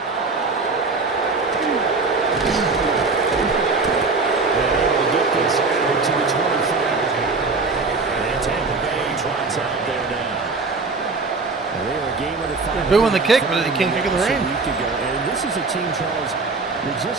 To the 25. And Tampa Bay trots out there now. They're a game of the five. They're booing the kick, but they can't kick in the rain. And this is a team, Charles, that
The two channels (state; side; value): quieter; left; 4.0 dB